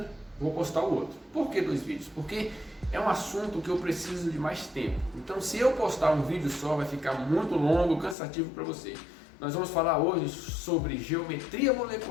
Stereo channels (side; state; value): right; drops out; at 8.2 s